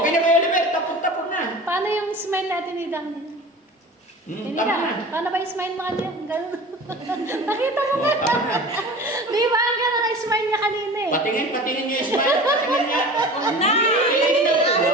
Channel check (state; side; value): normal; both; correlation 0.38